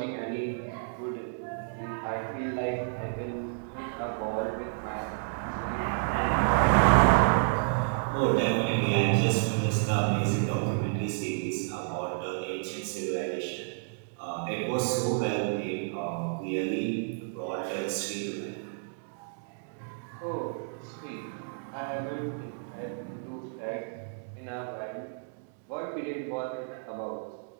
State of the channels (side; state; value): left; silent; digital silence